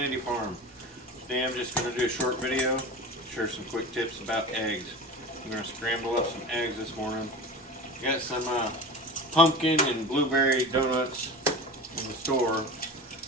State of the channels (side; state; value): both; normal; correlation 0.31